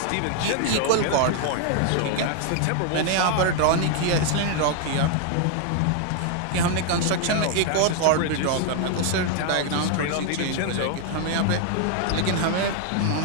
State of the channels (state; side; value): different; both; correlation 0.00